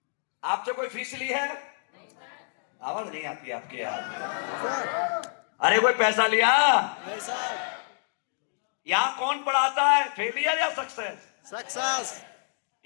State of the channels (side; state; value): right; silent; digital silence